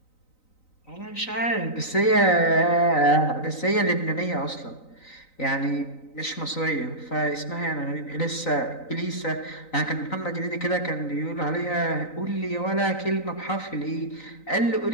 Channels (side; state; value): right; late; 3.9 ms